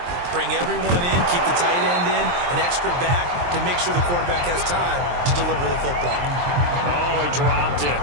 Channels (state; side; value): late; left; 23 ms